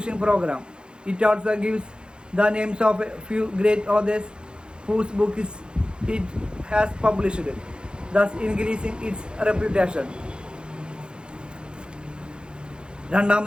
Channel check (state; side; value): late; left; 0.050 ms